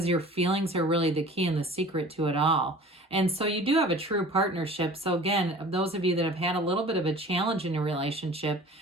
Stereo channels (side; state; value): both; normal; correlation 0.44